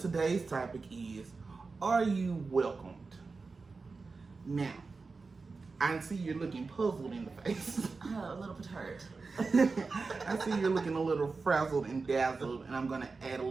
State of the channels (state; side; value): quieter; left; 4.2 dB